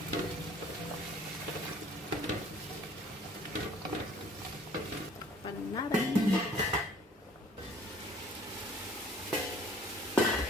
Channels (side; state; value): both; normal; correlation 0.54